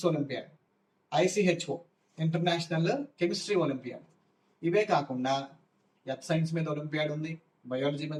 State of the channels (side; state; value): both; identical; correlation 1.00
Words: olympiad, IChO international chemistry olympiad. ఇవే కాకుండా ఎర్త్ సైన్స్ మీద ఒలింపియాడ్ ఉంది, బయాలజీ